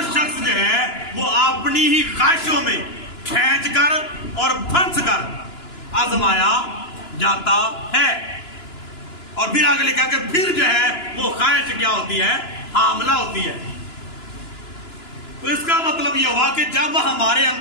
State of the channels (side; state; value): right; late; 2.9 ms